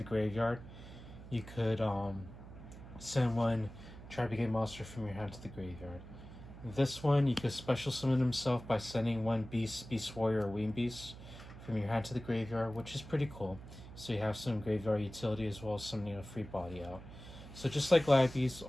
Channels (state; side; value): noise; right; hum, 15 dB below the sound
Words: graveyard, you could send one Tribegate monster from your hand to the graveyard. This one, you could special summon himself by sending one Beast Warrior, or Wing Beast from your hand to the graveyard, which is pretty cool. So you have some graveyard utility as well as some free body out. So just like Glidebeast,